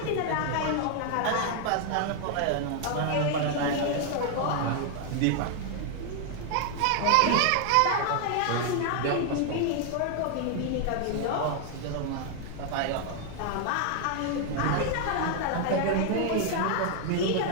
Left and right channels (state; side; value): different; both; correlation 0.00